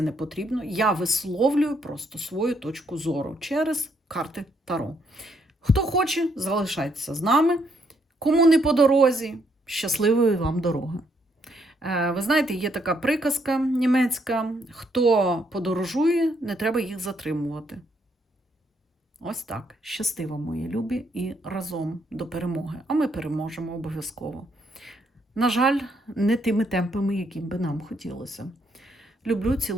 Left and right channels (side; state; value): both; normal; correlation 0.73